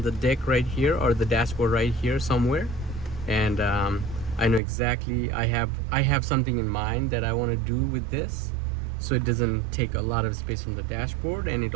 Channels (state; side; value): drops out; left; at 4.6 s